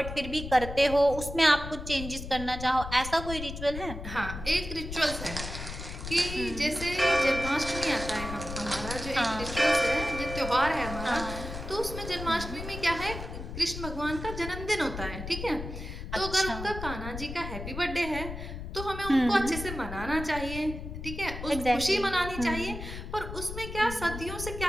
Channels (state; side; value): noise; left; rumble, 8 dB below the sound